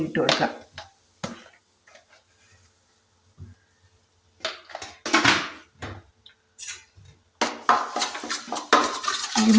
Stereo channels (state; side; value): identical; both; correlation 1.00